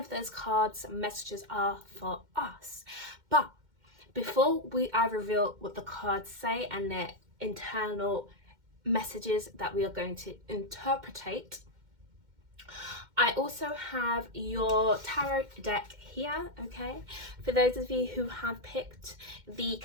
those cards messages are for us. But before I reveal what the cards say and their internal messages that we are going to interpretate, I also have your tarot deck here. Okay, for those of you who have picked the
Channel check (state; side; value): late; left; 2.1 ms